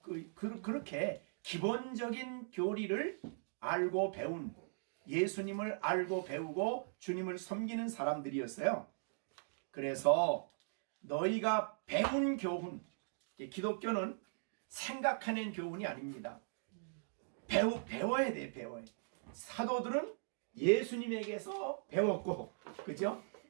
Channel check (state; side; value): silent; left; digital silence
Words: 그렇게 기본적인 교리를 알고 배운, 예수님을 알고 배우고 주님을 섬기는 사람들이었어요. 그래서 너희가 배운 교훈, 기독교는 생각해낸 교훈이 아닙니다. 배워야 돼. 사도들은 예수님에게서 배웠고, 그죠?